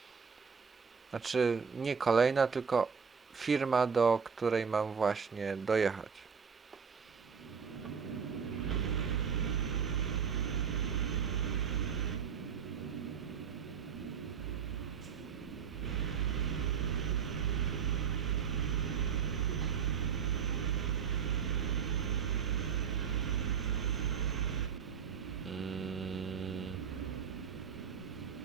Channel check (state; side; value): quieter; left; 6.5 dB